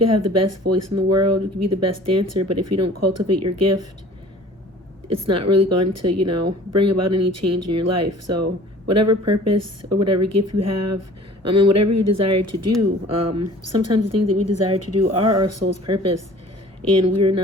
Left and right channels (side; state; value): both; normal; correlation 0.47